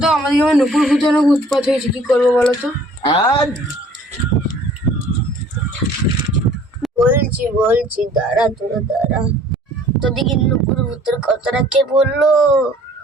আমাদের যেমন নুপুর ভূতে অনেক উৎপাত হয়েছে, কি করবো বলো তো? বলছি বলছি দাঁড়া তোরা দাঁড়া। তোদিকে নুপুর ভূতের কথাটা কে বললো?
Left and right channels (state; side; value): normal; both; correlation 0.54